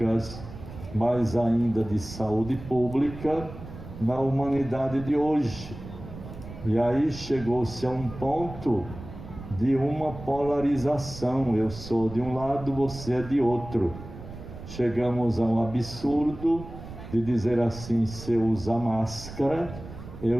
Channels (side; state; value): right; noise; rumble, 13 dB below the sound